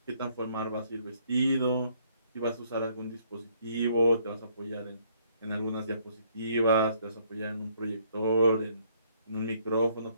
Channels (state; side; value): inverted; both; correlation -0.66